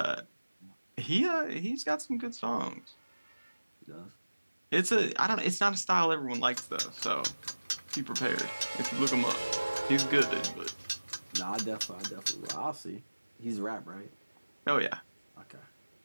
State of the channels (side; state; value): both; inverted; correlation -1.00